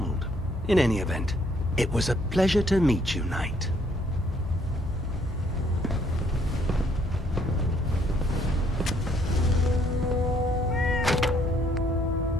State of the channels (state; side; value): normal; both; correlation 0.67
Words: In any event, it was a pleasure to meet you, Knight.